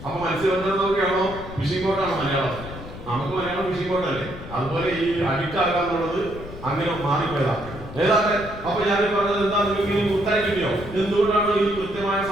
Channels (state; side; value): noise; left; rumble, 13 dB below the sound